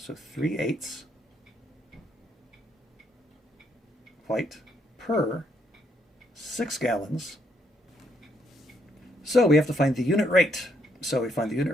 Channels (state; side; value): normal; both; correlation 0.73